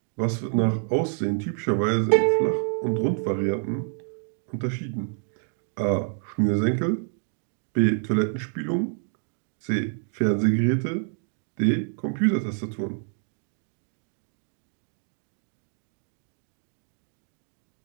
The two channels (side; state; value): left; silent; 60 dB below the other